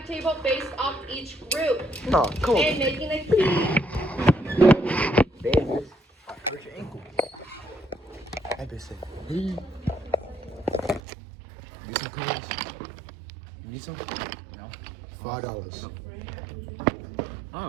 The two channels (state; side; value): drops out; left; at 11.0 s